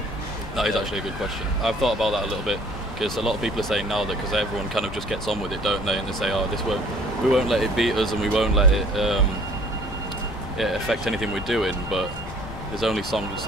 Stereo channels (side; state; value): left; noise; rumble, 12 dB below the sound